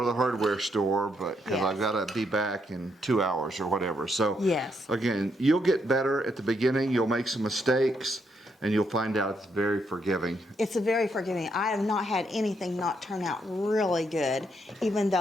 the hardware store, but because Yes. I've got to be back in 2 hours or whatever. So Yes. again, you'll get better at the beginning. You'll make some mistakes, and you'll find out it's very forgiving. It's a very forgiving. I have not had anything not turn out really good, even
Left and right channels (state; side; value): normal; both; correlation 0.77